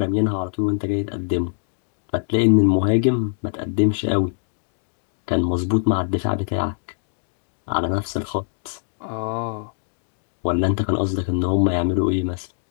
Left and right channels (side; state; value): right; silent; digital silence